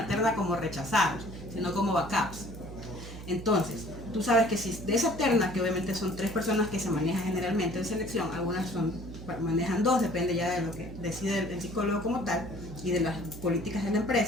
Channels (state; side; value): noise; right; hum, 12 dB below the sound